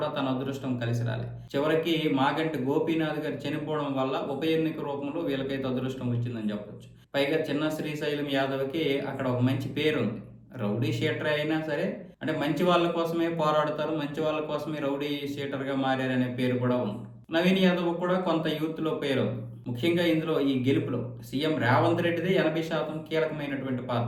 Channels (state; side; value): identical; both; correlation 1.00